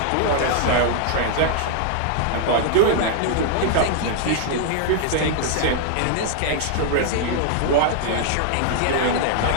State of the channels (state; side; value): different; both; correlation 0.00